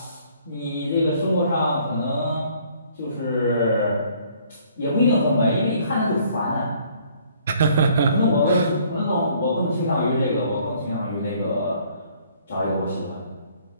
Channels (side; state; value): both; inverted; correlation -0.60